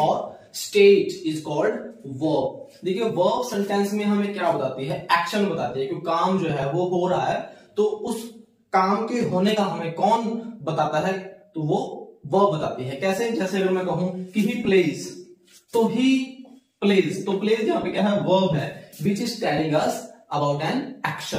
और स्टेट इज कॉल्ड वर्ब। देखिए, वर्ब सेंटेंस में हमें क्या बताती है, एक्शन बताती है कि काम जो है वो हो रहा है, तो उस काम के होने का हमें कौन बताता है, तो वो वर्ब बताती है। कैसे? जैसे अगर मैं कहूं कि ही प्लेज, तो ही प्लेज, तो प्लेज यहाँ पे क्या है, वर्ब है which is telling us about an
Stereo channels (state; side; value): identical; both; correlation 1.00